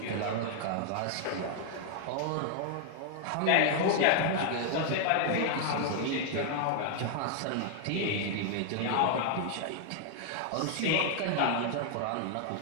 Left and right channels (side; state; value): both; different; correlation 0.00